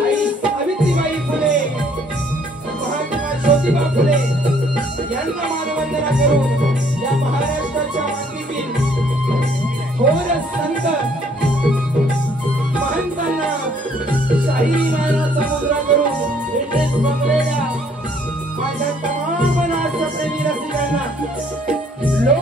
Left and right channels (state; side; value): normal; both; correlation 0.63